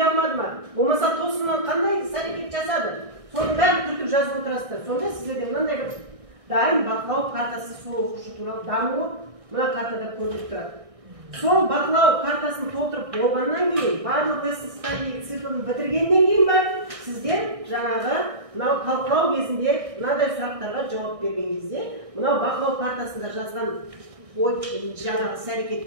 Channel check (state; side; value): late; left; 1.6 ms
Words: алмады ма? Болмаса тосыннан қандай іс-әрекет жасады? Соның бәрін түртіп жазып отырасыздар. Сонда сіздерде мынандай бір дайын бақылау картасы сол оқушы туралы дамуы мына картада көрініп тұрады. Сол бақылау картасын толтырып болғаннан кейін, барлық lesson циклын бітіргеннен кейін бар, сіздер жаңағы мынау талқылау кезінде мынадай сұрақтарға жауап берген кезде, мынау бақылау картасында жазған жаңағы